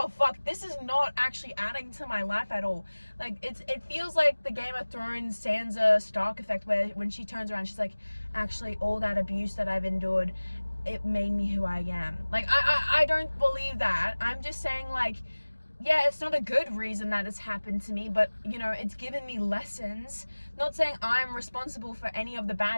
fuck, this is not actually adding to my life at all. Like, it feels like the Game of Thrones Sansa Stark effect, where when she turns around, she's like, actually, all that abuse that I've endured, it made me who I am. Like, I don't believe that. I'm just saying, like, yeah, it's not a good reason that it's happened to me, but, you know, it's given me lessons. Not saying I'm responsible for any of the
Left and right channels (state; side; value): inverted; both; correlation -1.00